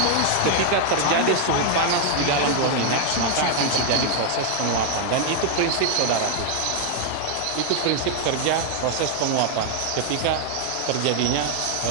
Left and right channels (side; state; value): both; different; correlation 0.00